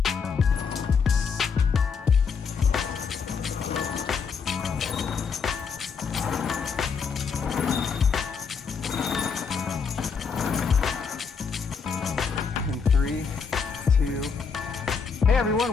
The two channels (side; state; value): right; quieter; 5.8 dB